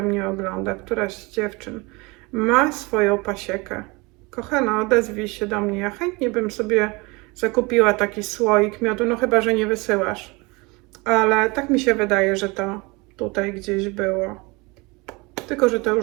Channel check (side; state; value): left; quieter; 25.9 dB